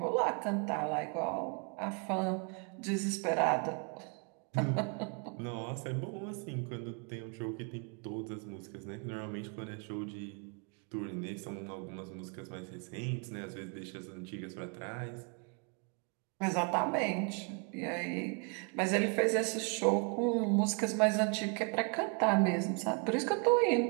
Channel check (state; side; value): quieter; left; 36.2 dB